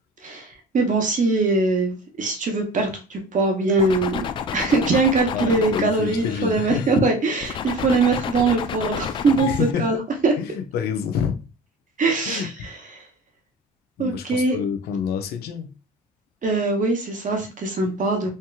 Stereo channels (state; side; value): normal; both; correlation 0.38